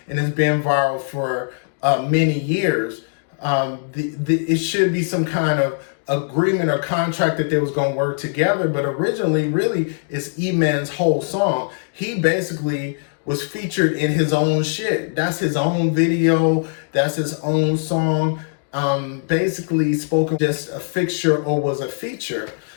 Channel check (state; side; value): silent; right; digital silence